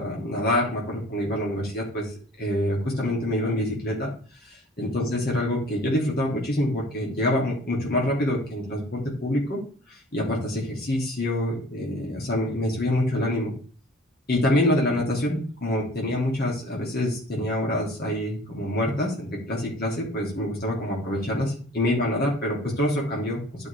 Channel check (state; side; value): normal; both; correlation 0.48